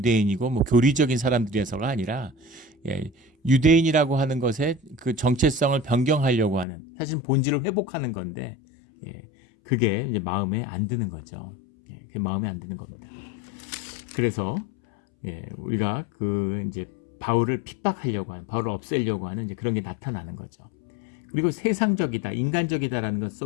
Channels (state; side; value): drops out; right; at 6.7 s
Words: 뭐 교리적인 사람들이어서가 아니라 유대인이라고 하는 것의 그 정체성을 변경하려고 하는 사실은 본질을 회복하는 건데 그게 이제 마음에 안 드는 거죠. 그게 마음에 안 드는 겁니다. 그래서 우리가 그 이제 바울을 핍박하려고 하는, 바울을 없애려고 하는 이제 그런 게 나타나는 거죠. 그리고 세상적이다, 인간적이다라는 것